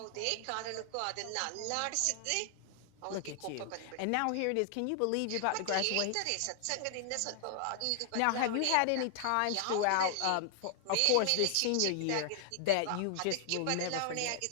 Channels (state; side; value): different; both; correlation 0.00